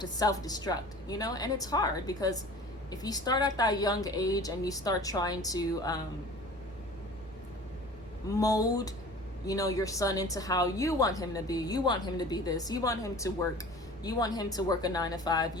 self-destruct, and it's hard because if you start at that young age and you start trying to mold, your son into how you want him to be, you want him to be this, you want him to work, you want him to work a 9-to-5,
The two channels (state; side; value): normal; both; correlation 0.42